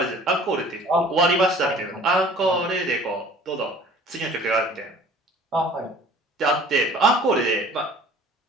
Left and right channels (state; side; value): normal; both; correlation 0.48